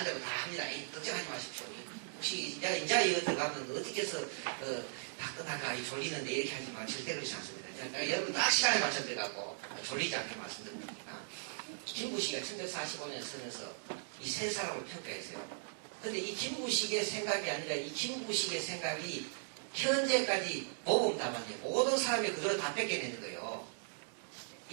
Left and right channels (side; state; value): left; silent; digital silence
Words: 다 합니다. 걱정하지 마십시오. 혹시 내가 인자 이거 들어가면 어떻게 해서 박근혜가 졸리는데 이렇게 하지만 절대 그렇지 않습니다. 그러니까 여러분 딱 시간에 맞춰 들어가고 졸리지 않게 말씀드립니다. 김부식이 1145년에 쓰면서 이 세 사람을 평가했어요. 근데 이 김부식의 생각이 아니라 이 김부식의 생각이 현재까지 모범답안이에요. 모든 사람이 그대로 다 뺏겨내는 거예요.